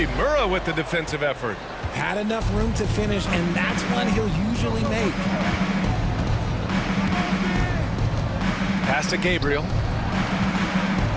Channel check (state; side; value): identical; both; correlation 1.00